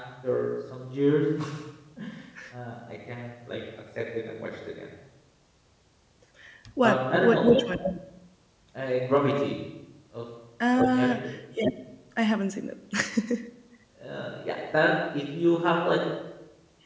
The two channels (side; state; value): both; identical; correlation 1.00